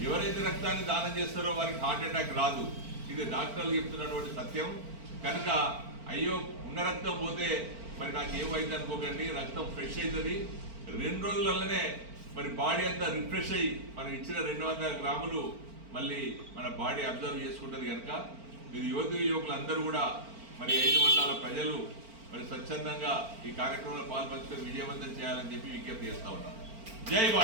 ఎవరైతే రక్తాన్ని దానం చేస్తారో వారికి హార్ట్ అటాక్ రాదు. ఇది డాక్టర్లు చెప్తున్నటువంటి సత్యం. కనుక అయ్యో ఉన్న రక్తం పోతే మరి నాకు ఏమైంది అనుకోకండి, రక్తం ఫ్రెష్ అవుతుంది. 2 రోజులలోనే మరి బాడీ అంతా రిఫ్రెష్ అయ్యి మనం ఇచ్చిన 200 గ్రాములు మళ్ళీ మన బాడీ అబ్జర్వ్ చేసుకుంటుంది. కనుక మీరు యువకులు అందరూ కూడా మరి 5 మండలాల ప్రజలు మరి స్వచ్ఛందంగా ఈ కార్యక్రమంలో పాల్పంచుకొని విజయవంతం చేయాలని చెప్పి విజ్ఞప్తి చేస్తా ఉన్నాం. జై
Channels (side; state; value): left; late; 4.4 ms